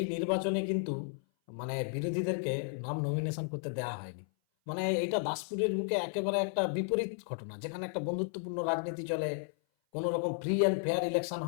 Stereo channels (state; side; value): silent; right; 55 dB below the other